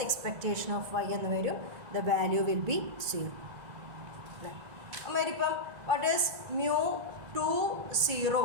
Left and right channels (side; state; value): left; late; 2.0 ms